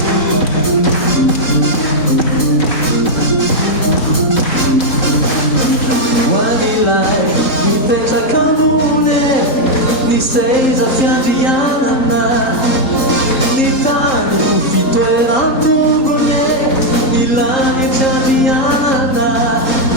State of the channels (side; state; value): right; late; 3.8 ms